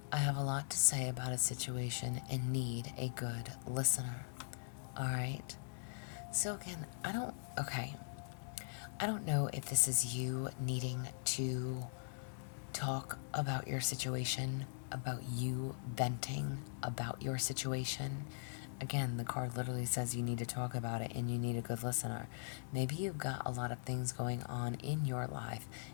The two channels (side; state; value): right; silent; digital silence